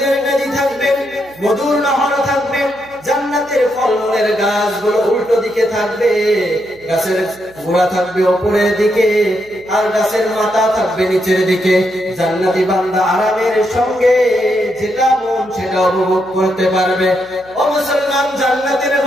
নদী থাকবে, মধুর নহর থাকবে, জান্নাতের ফলমূলের গাছগুলো উল্টো দিকে থাকবে, গাছের গোড়া থাকবে উপরের দিকে আর গাছের মাথা থাকবে নিচের দিকে। জান্নাতি বান্দা আরামের সঙ্গে যেটা মন সেটা উপভোগ করতে পারবে। ও মুসলমান, জান্নাতের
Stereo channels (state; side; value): noise; right; hum, 27 dB below the sound